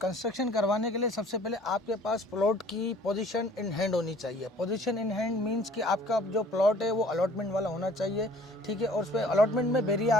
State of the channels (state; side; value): normal; both; correlation 0.53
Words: कंस्ट्रक्शन करवाने के लिए सबसे पहले आपके पास प्लॉट की पोजीशन इन हैंड होनी चाहिए। पोजीशन इन हैंड मींस कि आपका जो प्लॉट है वो अलॉटमेंट वाला होना चाहिए, ठीक है। और उस पर अलॉटमेंट में बेरिया